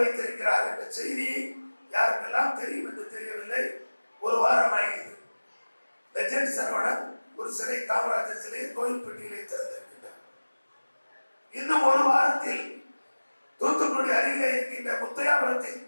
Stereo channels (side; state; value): both; inverted; correlation -1.00